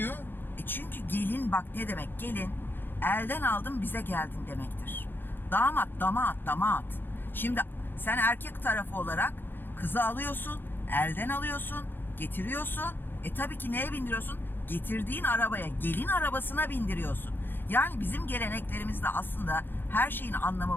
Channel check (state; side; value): late; right; 0.098 ms